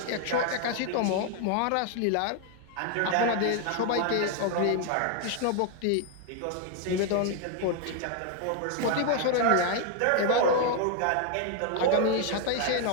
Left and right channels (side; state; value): both; different; correlation 0.00